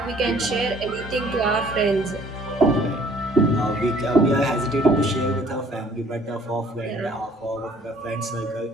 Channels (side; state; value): both; normal; correlation 0.57